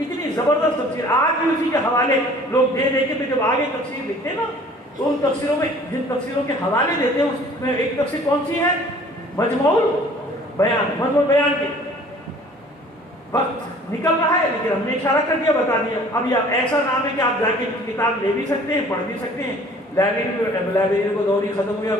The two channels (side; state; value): both; normal; correlation 0.51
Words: زبردست تفسیر۔ آج بھی اسی کے حوالے لوگ دے دے کے پھر جب آگے تفسیر لکھتے نا، تو ان تفسیروں میں جن تفسیروں کے حوالے دیتے ہیں اس میں ایک تفسیر کون سی ہے؟ مجموع بیان۔ مجموع بیان کے وقت نکل رہا ہے لیکن ہم نے اشارہ کر دیا، بتا دیا۔ اب یہ ایسا نام ہے کہ آپ جا کے کتاب لے بھی سکتے ہیں، پڑھ بھی سکتے ہیں، لائبریری کو دور ہی ختم ہو گیا،